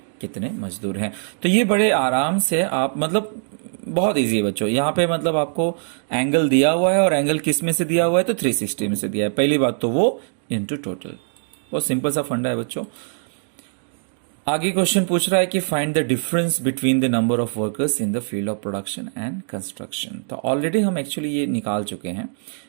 कितने मजदूर हैं। तो ये बड़े आराम से आप, मतलब बहुत इजी है बच्चों, यहाँ पे मतलब आपको एंगल दिया हुआ है, और एंगल किस में से दिया हुआ है तो 360 में से दिया है, पहली बात तो वो इंटू टोटल, बहुत सिंपल सा फंडा है बच्चों। आगे क्वेश्चन पूछ रहा है कि find the difference between the number of workers in the field of production and construction. तो ऑलरेडी हम एक्चुअली ये निकाल चुके हैं,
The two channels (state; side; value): silent; left; 64 dB below the other